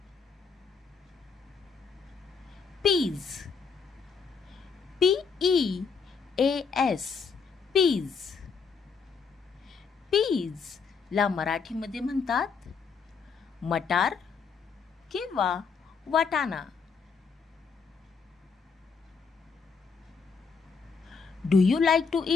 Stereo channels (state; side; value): quieter; right; 5.5 dB